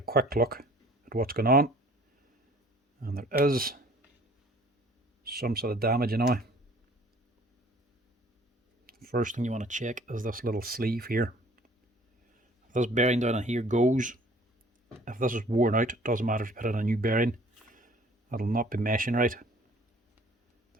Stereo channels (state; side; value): normal; both; correlation 0.53